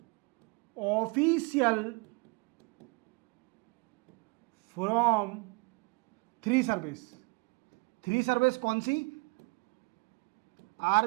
official from three service कौन सी,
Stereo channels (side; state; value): left; quieter; 30.1 dB